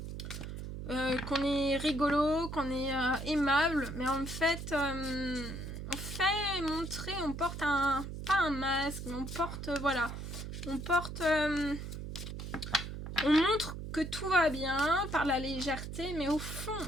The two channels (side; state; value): right; noise; hum, 7 dB below the sound